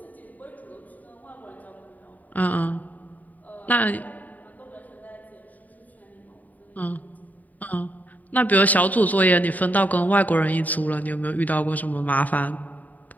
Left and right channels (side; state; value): right; late; 0.078 ms